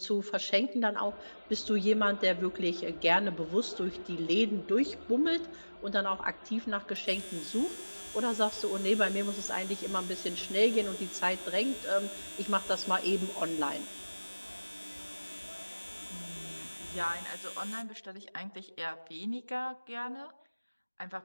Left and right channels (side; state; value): both; inverted; correlation -1.00